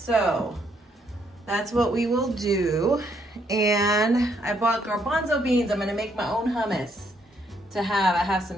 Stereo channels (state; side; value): normal; both; correlation 0.72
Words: that's what we will do. And I bought garbanzo beans. I'm gonna make my own hummus to have. I have